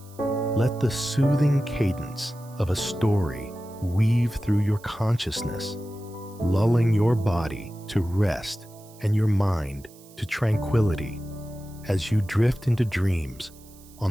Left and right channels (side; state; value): right; noise; hiss, 24 dB below the sound